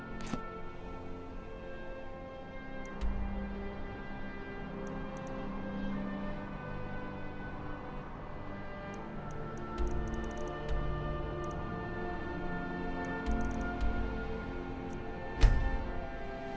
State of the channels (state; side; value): identical; both; correlation 1.00